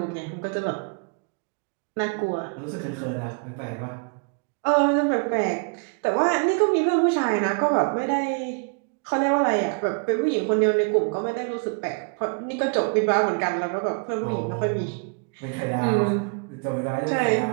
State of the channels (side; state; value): left; quieter; 38.1 dB